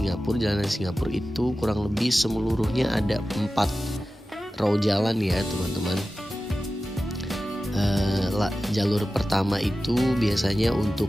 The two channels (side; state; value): both; normal; correlation 0.94